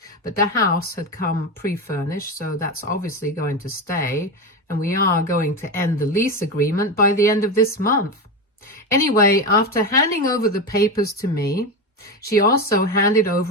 but the house had come pre-furnished, so that's obviously going to stay, and we are going to end the lease agreement by the end of this month. Anyway, after handing over the papers to me, she also handed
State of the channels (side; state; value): both; normal; correlation 0.17